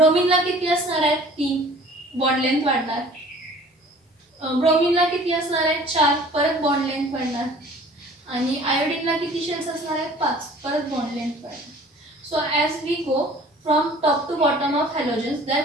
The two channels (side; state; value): both; normal; correlation 0.49